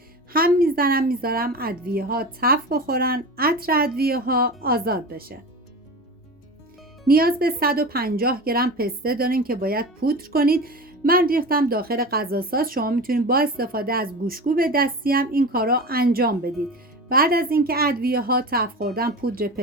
هم میذارم ادویه ها تف بخورن، عطر ادویه ها آزاد بشه. نیاز به 150 گرم پسته داریم که باید پودر کنید. من ریختم داخل غذاساز. شما میتونید با استفاده از گوشت‌کوب دستی هم این کارا انجام بدید. بعد از اینکه ادویه ها تف خوردن، پودر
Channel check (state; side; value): normal; both; correlation 0.30